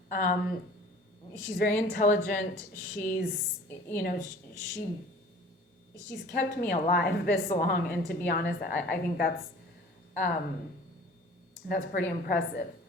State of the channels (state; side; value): normal; both; correlation 0.47